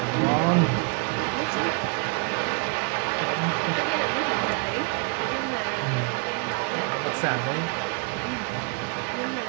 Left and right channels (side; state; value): left; quieter; 33.1 dB